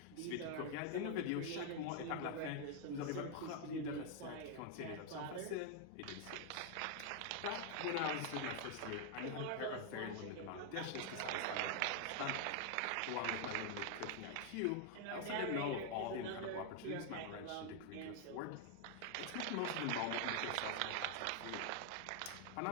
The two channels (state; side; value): different; both; correlation 0.00